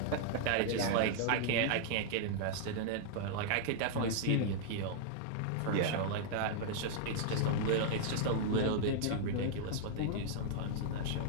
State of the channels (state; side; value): different; both; correlation -0.01